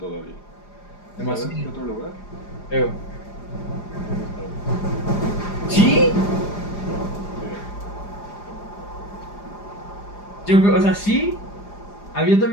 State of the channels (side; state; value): right; late; 4.9 ms